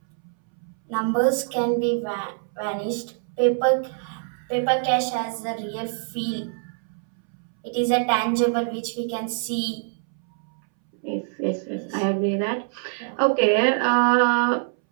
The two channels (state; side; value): silent; left; 62 dB below the other